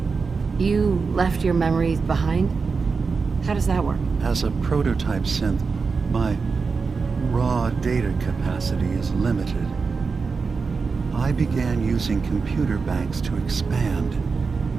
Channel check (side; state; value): left; quieter; 4.8 dB